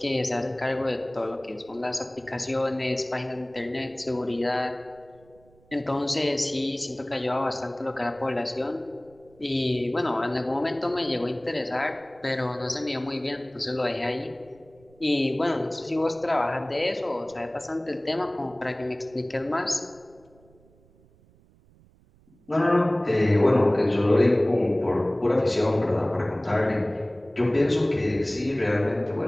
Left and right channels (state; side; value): noise; right; rumble, 29 dB below the sound